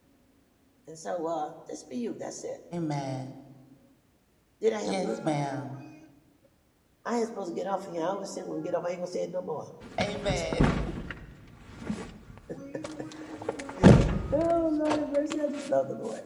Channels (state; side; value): identical; both; correlation 1.00